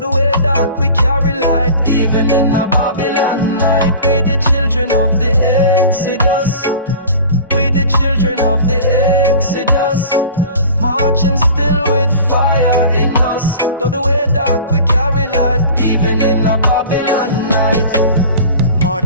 way dark we carry light, even in a Babylon night. We the children of the Exodus. We the children of the Exodus, marching still with fire in us. Though the way dark, we carry light, even in a Babylon night.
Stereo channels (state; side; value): inverted; both; correlation -0.41